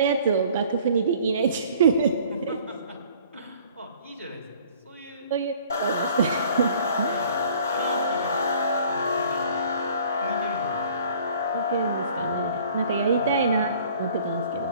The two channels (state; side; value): inverted; both; correlation -0.53